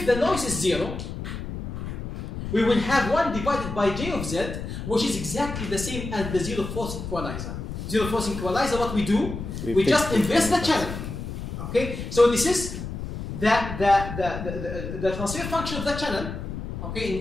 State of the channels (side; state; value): left; noise; rumble, 7 dB below the sound